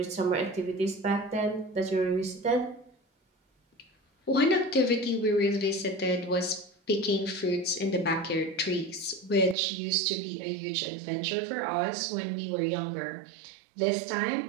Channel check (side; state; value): left; drops out; at 9.6 s